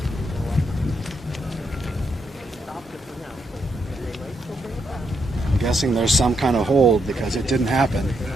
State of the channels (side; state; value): both; normal; correlation 0.79